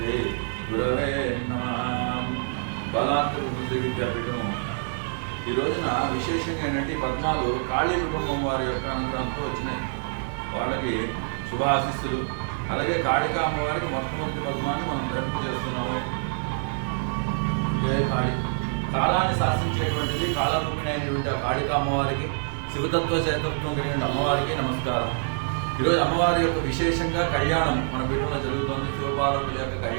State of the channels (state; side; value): silent; left; digital silence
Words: गुरवे नमः। బలాత్ర శ్రీ విద్యాపీఠం ఈ రోజున విశేషంగా ఏంటంటే పద్మాలు కాళీ కుటుంబం వారి యొక్క అనుగ్రహంతో వచ్చినాయి. వాళ్ళకి శుభాశిస్సులు. అలాగే కాళికా అమ్మవారికి మొట్టమొదటి పద్మాన్ని మనం ధరింపు చేస్తున్నాము. జై కాళి. కాలాన్ని శాసించేటువంటిది కాలరూపిణి అయినటువంటి ఆ కాళికా అమ్మవారికి, శివతత్వ చేతత్వం కలిగిన అమ్మవారికి నమస్కారం. ఈరోజు అమ్మవారి యొక్క విశేషంగా కళ్యాణం మన పీఠంలో జరుగుతుంది. శివపార్వతుల యొక్క